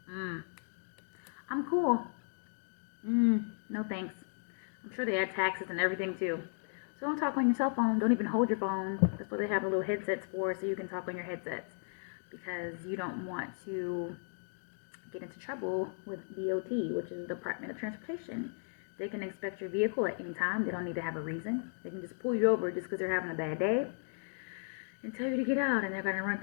I'm cool. No thanks. I'm sure they add taxes and everything too. So don't talk on your cell phone. Don't even hold your phone. That's what they have the little headsets for, so you can talk on your headsets. Because you don't want to get into trouble with DOT, which is the Department of Transportation. They can inspect your vehicle at any time. They don't need to have a reason. They can just pull you over just because they're having a bad day and tell you to get out, and they're going to run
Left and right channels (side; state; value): right; silent; digital silence